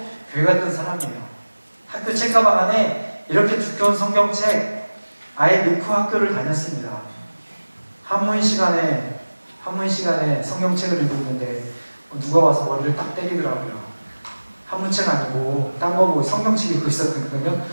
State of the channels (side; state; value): both; inverted; correlation -1.00